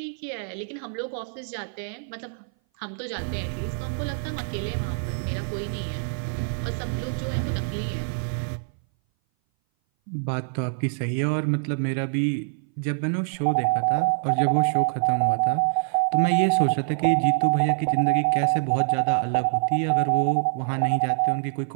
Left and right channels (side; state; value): left; silent; 59 dB below the other